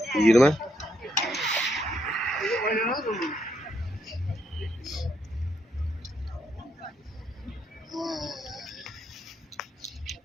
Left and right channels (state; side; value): normal; both; correlation 0.77